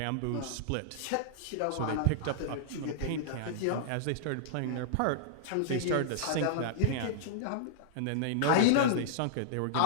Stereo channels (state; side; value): different; both; correlation -0.02